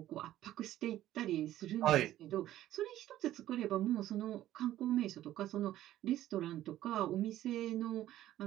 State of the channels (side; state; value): left; quieter; 13.5 dB